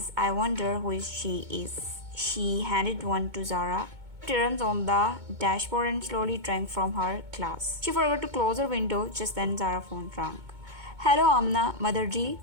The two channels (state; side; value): late; left; 2.2 ms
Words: I wonder who she is. She handed one to Zara. Turns on the dashboard and slowly drank from her glass. She forgot to close her window. Just then Zara's phone rang. Hello Amna, Motherji.